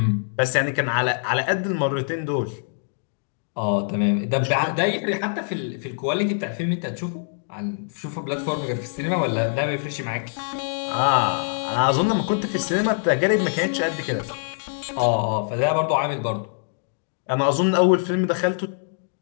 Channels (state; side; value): silent; right; digital silence